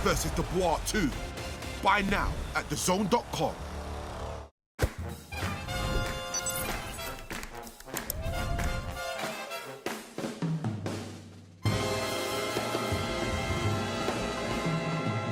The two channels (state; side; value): identical; both; correlation 1.00